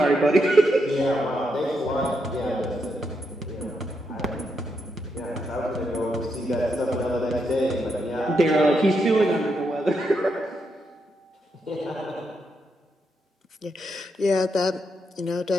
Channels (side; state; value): both; normal; correlation 0.81